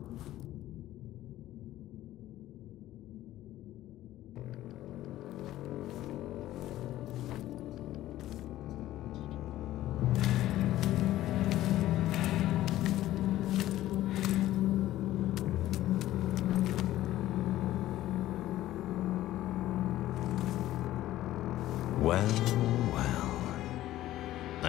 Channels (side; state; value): right; quieter; 14.5 dB